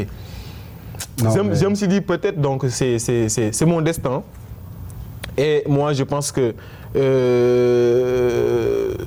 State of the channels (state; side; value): identical; both; correlation 1.00